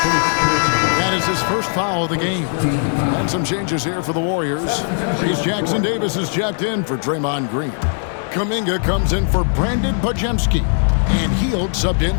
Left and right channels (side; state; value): right; silent; digital silence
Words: That is his first foul of the game. And some changes here for the Warriors. Reese Jackson-Davis is checked in for Draymond Green. Kuminga comes in for Brandon Bajemski, and Hield subbed